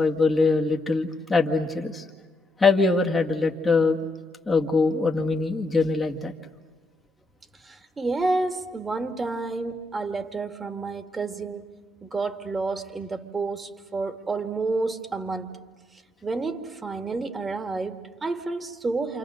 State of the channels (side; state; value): both; normal; correlation 0.79